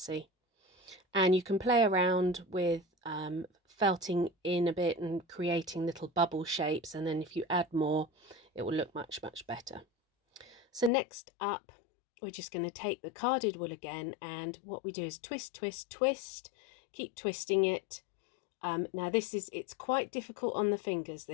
And you can play around with felting in a bit and creating little bubble shapes, and then if you add more it will look much better. So next up we're just going to take the carded wool again, and what we do is twist, twist, twist, keep twisting it. Now it's quite difficult on the fingers,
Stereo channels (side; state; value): right; drops out; at 10.9 s